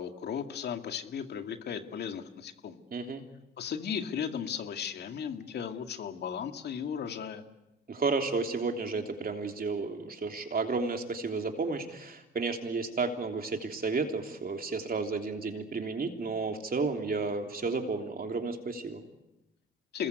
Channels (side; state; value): both; normal; correlation 0.34